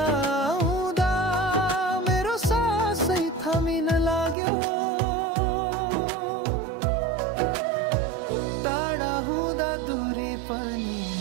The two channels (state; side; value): drops out; left; at 4.4 s